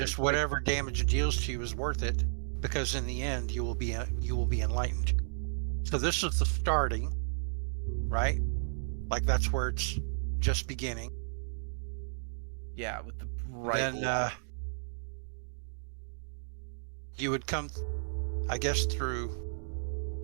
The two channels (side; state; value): left; silent; digital silence